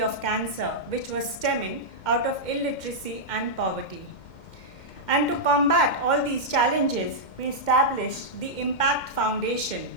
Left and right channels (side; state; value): right; late; 2.1 ms